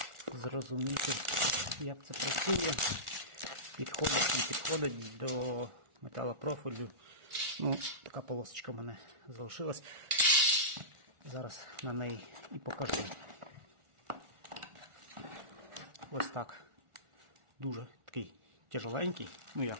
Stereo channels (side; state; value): left; late; 1.4 ms